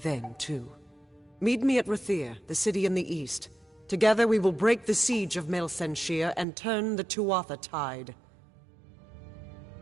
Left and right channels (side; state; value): left; drops out; at 6.5 s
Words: too. Meet me at Rathir, the city in the east. Together we will break the siege of Mel Senshir and turn the Tuatha tide.